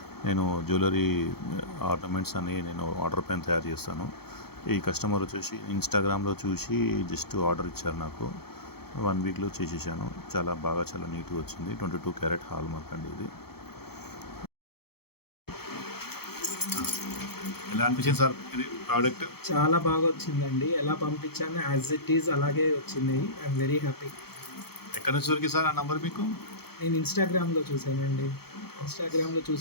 నేను జ్యువెలరీ ఆర్నమెంట్స్ అని నేను ఆర్డర్ పైన తయారు చేస్తాను. ఈ కస్టమర్ వచ్చేసి ఇన్‌స్టాగ్రామ్‌లో చూసి జస్ట్ ఆర్డర్ ఇచ్చారు నాకు. 1 వీక్‌లో చేసేసాను. చాలా నీట్‌గా వచ్చింది. 22 క్యారెట్ హాల్ మార్క్ అండి ఇది. ఎలా అనిపించింది సార్ ఇది ప్రోడక్ట్? చాలా బాగా వచ్చిందండి. ఎలా పంపించానో యాజ్ ఇట్ ఈజ్ అలాగే వచ్చింది. I'm very happy. ఎక్కడి నుంచి దొరికింది సార్ ఆ నంబర్ మీకు? నేను ఇన్‌స్టాగ్రామ్‌లో చూసానండి. ఇన్‌స్టాగ్రామ్‌లో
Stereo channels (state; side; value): late; right; 0.96 ms